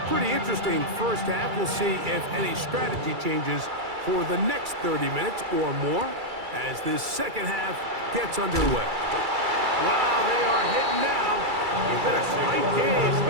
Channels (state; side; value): late; left; 2.3 ms